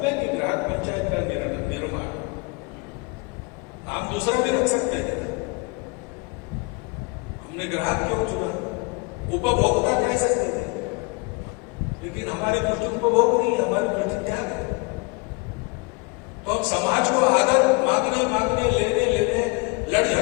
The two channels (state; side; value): quieter; right; 29.2 dB